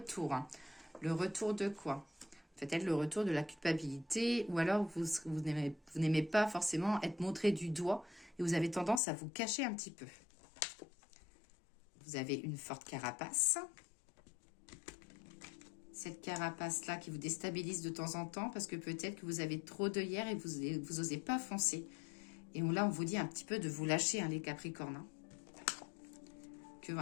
Hein. Le retour de quoi? Peut-être le retour de la culpabilité ou alors vous n'aimez pas forcément être montré du doigt et vous avez tendance à vous cacher un petit peu. Vous avez une forte carapace. Cette carapace-là qui vous déstabilise de temps en temps parce que peut-être que vous avez trop d'œillères et vous n'osez pas foncer. Et là, on vous dit un petit peu de vous lâcher, hein, les Capricornes. Hein. Que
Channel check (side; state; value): right; drops out; at 9.0 s